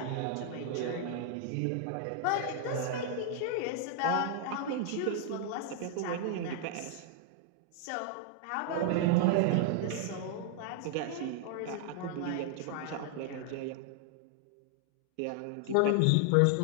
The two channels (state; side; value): different; both; correlation 0.00